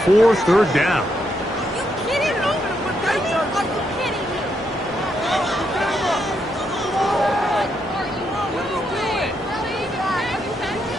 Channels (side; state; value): both; normal; correlation 0.79